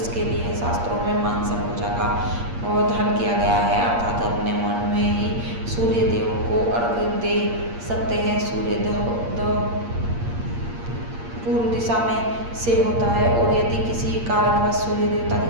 लिए शास्त्रों में मानसा पूजा का प्रावधान किया गया है, अर्थात अपने मन में ही सूर्यदेव को अर्घ दे सकते हैं। सूर्योदय पूर्व दिशा में से होता है और यदि किसी कारणवश सूर्य देवता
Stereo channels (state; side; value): late; left; 8.6 ms